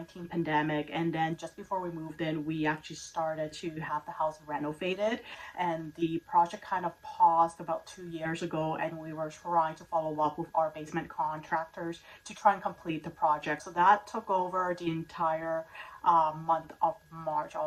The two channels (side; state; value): both; identical; correlation 1.00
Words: pandemic, and then just before we moved in, we actually started to have the house renovated, and the project kind of paused about 2 years ago, and we were trying to follow up with our basement contractors to try and complete the project. So that took over the entire month of March,